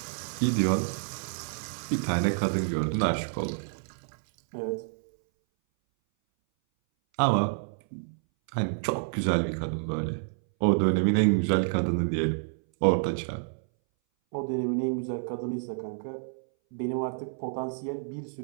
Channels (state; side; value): silent; left; 59 dB below the other